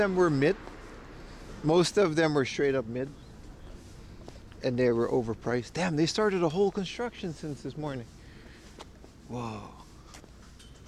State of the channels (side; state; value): both; identical; correlation 1.00